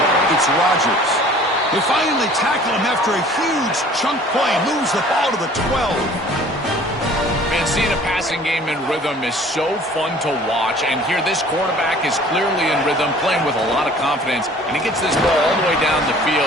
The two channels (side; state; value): both; normal; correlation 0.50